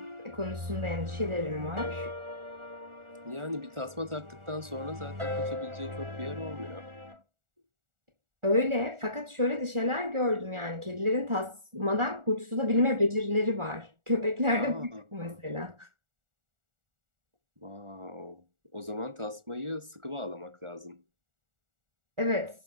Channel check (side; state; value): left; late; 1.4 ms